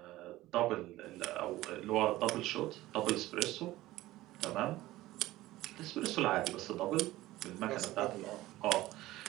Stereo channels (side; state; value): left; quieter; 16.9 dB